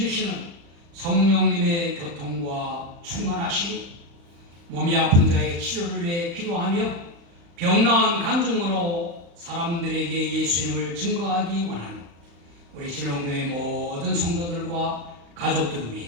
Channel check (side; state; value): left; late; 35 ms